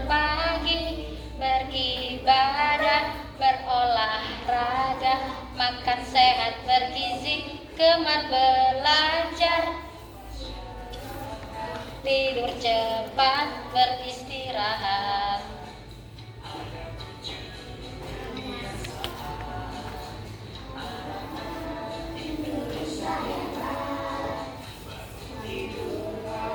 pagi, pergi makan sehat bergizi, gemar belajar, tidur cepat, beristirahat.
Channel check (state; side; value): identical; both; correlation 1.00